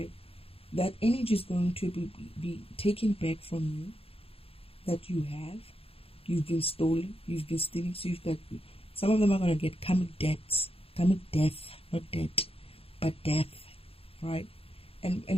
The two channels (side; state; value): right; late; 0.28 ms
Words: That energy is going to be taken back from you, that you have. You've been stolen, you've been stealing, so you've got, some of them are going to get karmic death, not debt, but death, right?